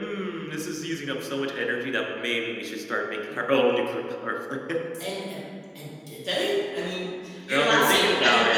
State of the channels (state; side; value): identical; both; correlation 1.00